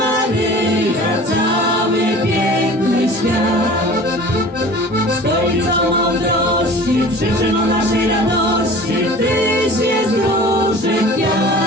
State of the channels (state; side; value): normal; both; correlation 0.43